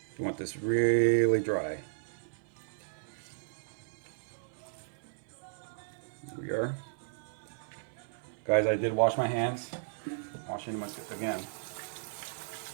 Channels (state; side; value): silent; left; 55 dB below the other